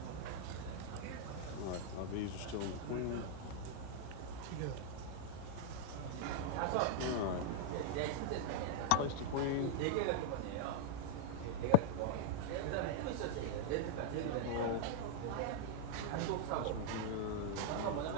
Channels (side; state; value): both; different; correlation -0.01